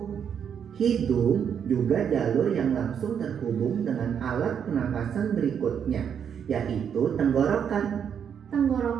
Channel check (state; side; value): quieter; left; 7.9 dB